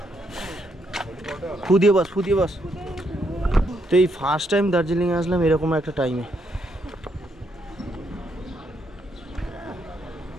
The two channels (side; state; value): both; normal; correlation 0.76